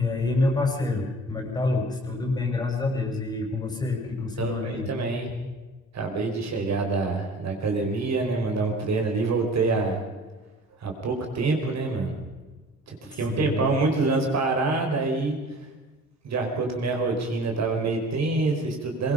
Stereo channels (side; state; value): both; normal; correlation 0.45